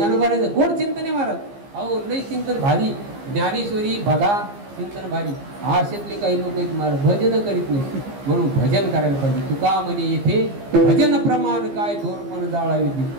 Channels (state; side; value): late; left; 15 ms